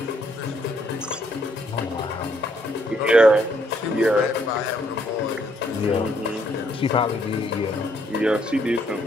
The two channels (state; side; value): normal; both; correlation 0.70